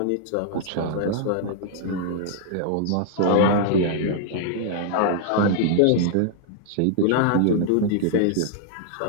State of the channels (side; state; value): both; different; correlation -0.01